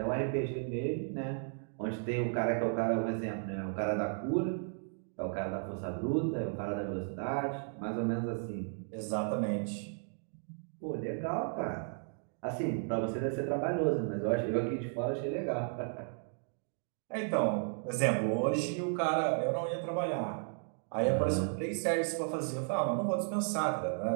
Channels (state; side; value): silent; left; 55 dB below the other